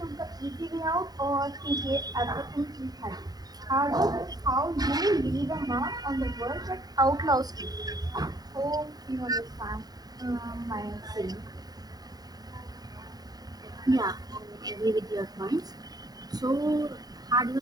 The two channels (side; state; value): left; late; 0.19 ms